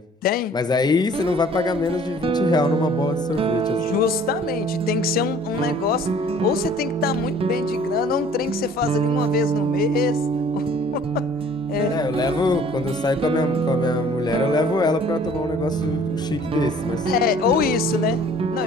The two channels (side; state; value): both; normal; correlation 0.53